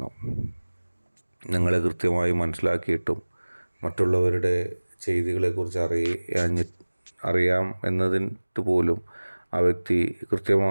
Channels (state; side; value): inverted; both; correlation -1.00